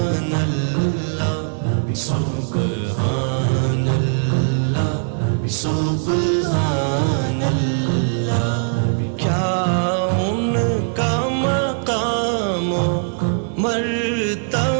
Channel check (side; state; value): left; silent; digital silence